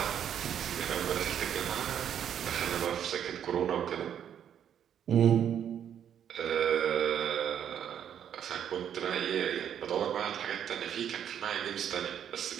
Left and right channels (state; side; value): quieter; left; 9.2 dB